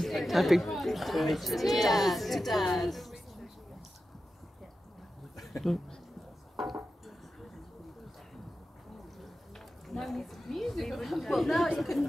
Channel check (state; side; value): normal; both; correlation 0.92